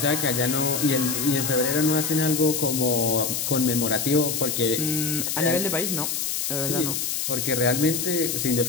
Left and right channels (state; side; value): noise; left; hiss, 1 dB below the sound